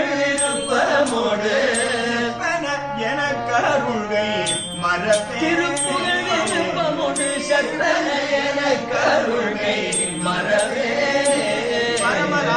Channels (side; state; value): both; identical; correlation 1.00